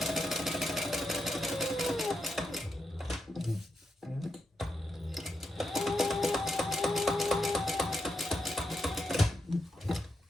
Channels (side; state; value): both; normal; correlation 0.84